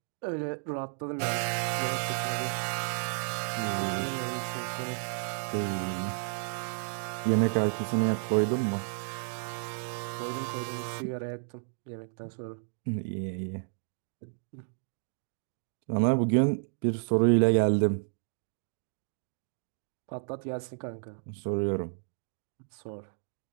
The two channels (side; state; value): left; silent; digital silence